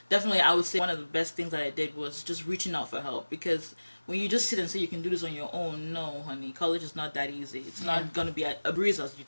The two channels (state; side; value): inverted; both; correlation -1.00